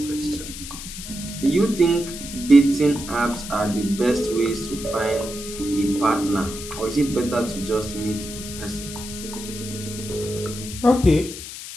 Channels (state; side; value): noise; left; hiss, 10 dB below the sound